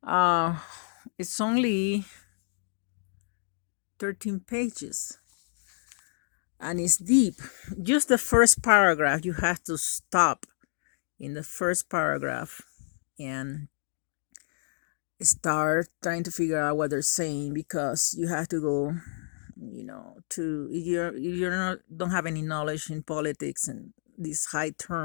Uh, it's only 13 pages and it's deep. Just the first paragraph, you have to stop in the first paragraph and start trying to figure out what they're saying, because you have to go, to you're not don't have any knowledge in politics and these high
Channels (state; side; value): silent; right; digital silence